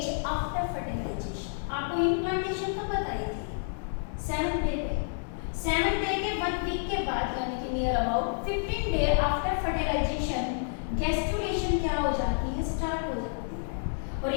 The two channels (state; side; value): silent; right; 58 dB below the other